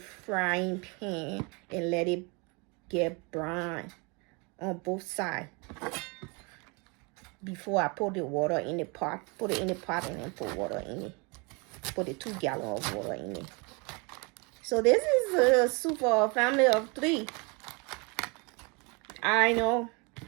pan and let it get brown on both sides before I put the water in the pot. Put it in the pot and then put water in it. Put the 2 gallons of water in it. So this is a soup for a family of 3. I know.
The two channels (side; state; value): left; quieter; 30.5 dB